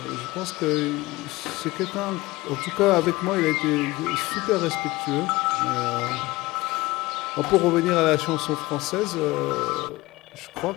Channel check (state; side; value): quieter; right; 20.0 dB